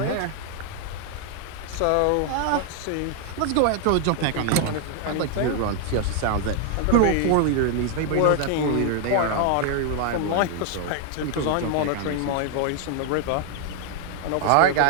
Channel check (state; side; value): different; both; correlation 0.00